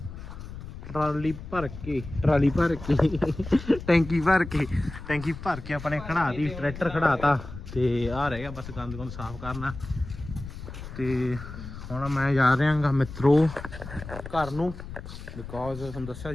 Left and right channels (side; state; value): left; noise; rumble, 11 dB below the sound